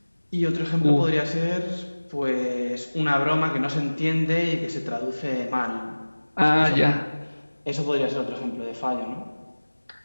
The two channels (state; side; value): inverted; both; correlation -1.00